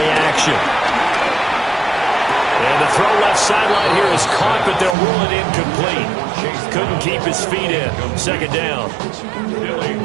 action. And the throw left sideline here is caught, but they'll rule it incomplete. Couldn't keep his feet in. Second down.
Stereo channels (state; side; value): drops out; left; at 5.0 s